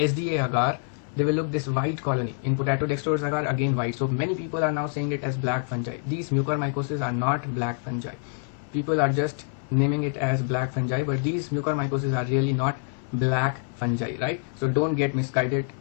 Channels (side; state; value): right; silent; 61 dB below the other